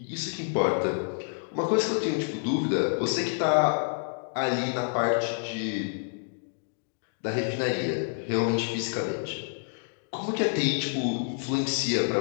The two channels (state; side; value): silent; right; digital silence